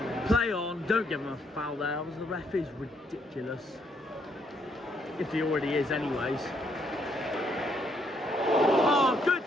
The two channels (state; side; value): normal; both; correlation 0.72